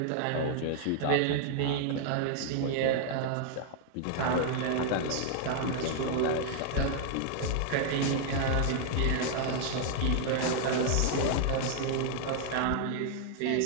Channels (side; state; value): both; different; correlation 0.00